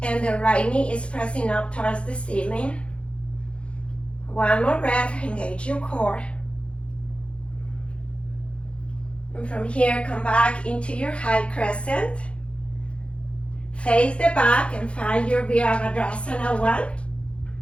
And the right knee is pressing up towards the ceiling. 1 more breath, engage your core. And from here, come back into your high crescent. Face the back and find your Virabhadrasana 1.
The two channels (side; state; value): right; late; 0.059 ms